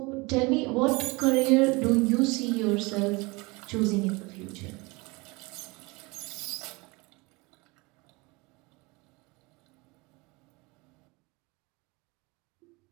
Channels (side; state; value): left; quieter; 25.6 dB